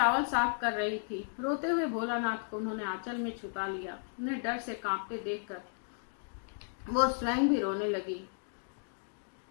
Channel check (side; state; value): right; silent; digital silence